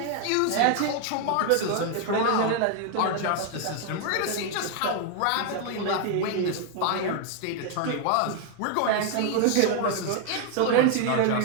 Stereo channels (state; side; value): different; both; correlation 0.00